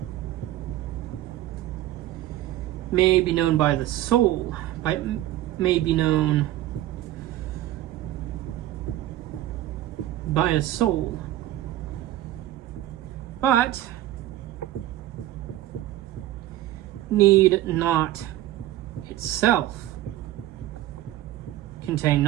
may be known by the soul, may be known by a soul, but need not itself contain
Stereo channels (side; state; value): left; quieter; 14.5 dB